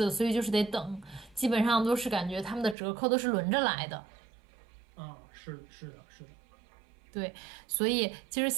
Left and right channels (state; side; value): drops out; left; at 2.8 s